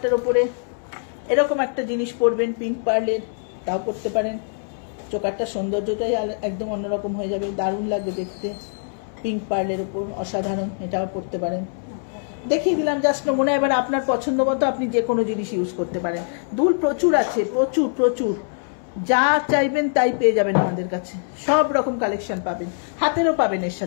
উপরে এরকম একটা জিনিস পরবেন পিঙ্ক পার্লের, তাও পরতে পারেন। চোকারটার সৌন্দর্যটাই একদম অন্যরকম হয়ে যাবে, দারুণ লাগবে দেখতে। পিঙ্ক পার্লের উপর অসাধারণ, এটাও পরতে পারেন। দেখিয়ে দিলাম জাস্ট নমুনা। এবার আপনার পছন্দ মতো আপনি যে কোনো জিনিস ইউজ করতে পারেন। দুল প্রচুর আছে, প্রচুর প্রচুর, যা চাইবেন তাই পেয়ে যাবেন আমাদের কাছে। সব রকম কালেকশন পাবেন, হাতেরও পাবেন, এর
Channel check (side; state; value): right; silent; 62 dB below the other